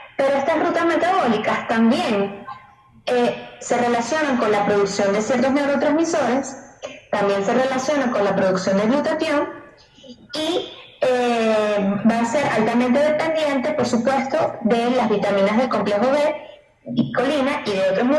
Pero estas rutas metabólicas también se relacionan con la producción de ciertos neurotransmisores, también se relacionan con la producción de glutatión, y va a ser altamente dependiente, por supuesto, de las vitaminas del complejo B, colina y de otros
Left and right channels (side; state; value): both; identical; correlation 1.00